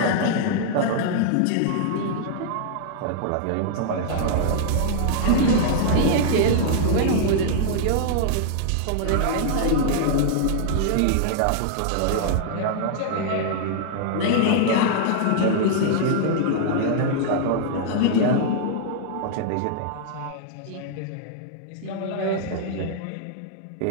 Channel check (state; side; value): different; both; correlation -0.01